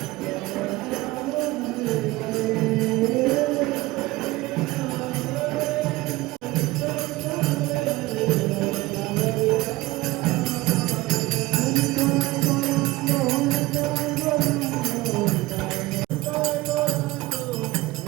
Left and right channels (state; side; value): quieter; left; 19.7 dB